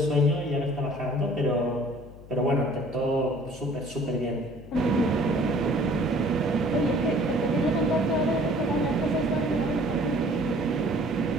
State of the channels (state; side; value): noise; left; hum, 18 dB below the sound